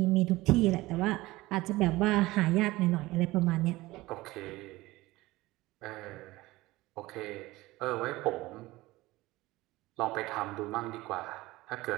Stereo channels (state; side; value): quieter; left; 19.3 dB